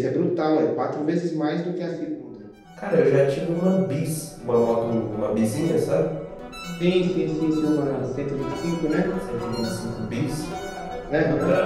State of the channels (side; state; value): both; identical; correlation 1.00